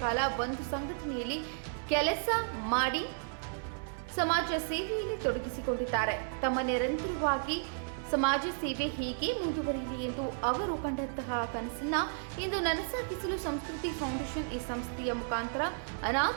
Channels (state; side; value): silent; left; digital silence